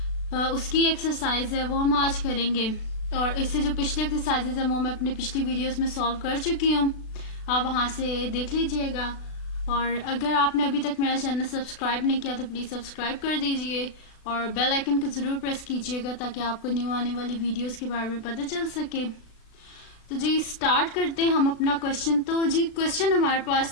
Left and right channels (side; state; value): right; late; 36 ms